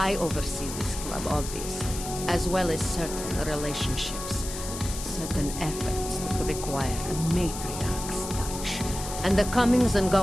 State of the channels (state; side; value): noise; left; hiss, 9 dB below the sound